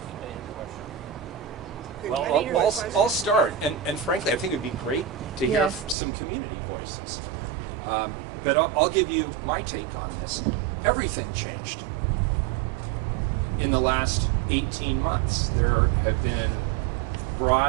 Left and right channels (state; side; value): drops out; left; at 6.0 s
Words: Well, I'll start, and frankly, I think it'd be great to hear some community voices. But I'll give you my take on this. Everything changed in the last 18 months. There have been